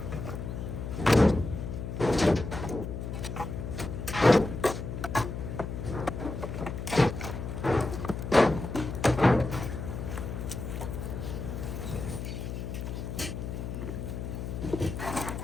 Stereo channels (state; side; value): noise; left; hum, 5 dB below the sound